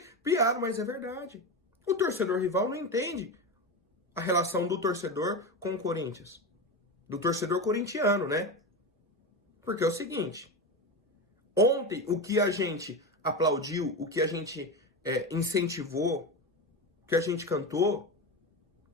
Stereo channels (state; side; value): normal; both; correlation 0.20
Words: piada, mas é verdade. O torcedor rival não entende a relação do torcedor com o Corinthians. Do torcedor corintiano, né? Porque é o seguinte. Ontem, o que a gente aplaudiu, o que a gente incentivou, o que a gente cantou,